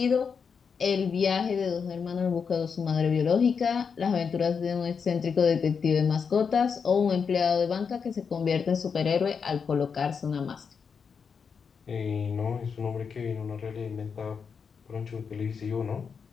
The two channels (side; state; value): right; quieter; 6.1 dB